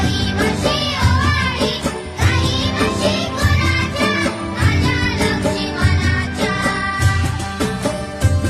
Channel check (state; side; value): identical; both; correlation 1.00